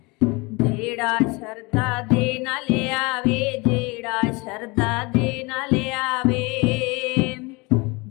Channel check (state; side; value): quieter; right; 26.6 dB